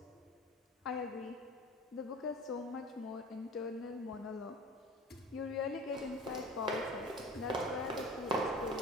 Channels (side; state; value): both; normal; correlation 0.39